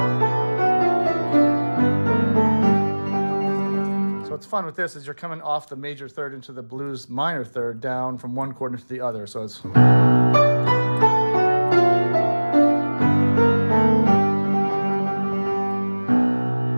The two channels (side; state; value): both; inverted; correlation -1.00